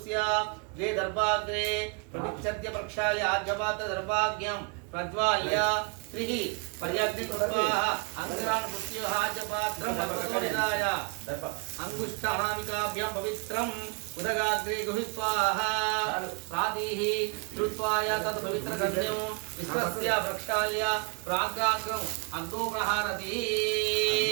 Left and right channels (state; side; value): quieter; left; 34.3 dB